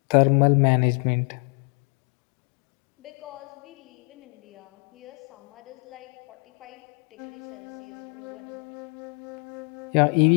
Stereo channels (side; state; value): right; quieter; 36.0 dB